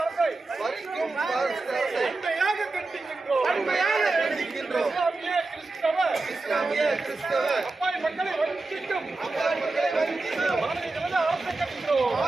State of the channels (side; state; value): left; quieter; 3.4 dB